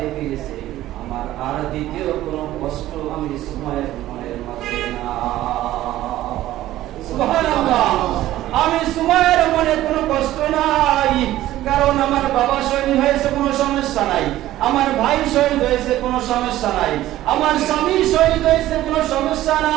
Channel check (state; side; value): quieter; left; 14.6 dB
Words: ফিরেছে, আমার আর দ্বিতীয় কোনো কষ্ট আমি সুমাইয়ের মনের মাঝে না। সুবহানাল্লাহ, আমি সুমাইয়ের মনে কোনো কষ্ট নাই, কারণ আমার বাবা শহীদ হয়েছে, কোনো সমস্যা নাই, আমার ভাই শহীদ হয়েছে, কোনো সমস্যা নাই, আমার স্বামী শহীদ হয়েছে, কোনো সমস্যা